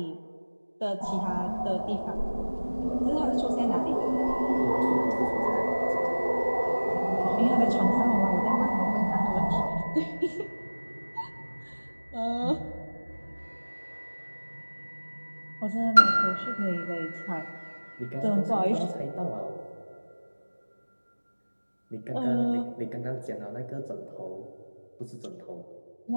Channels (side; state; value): both; inverted; correlation -1.00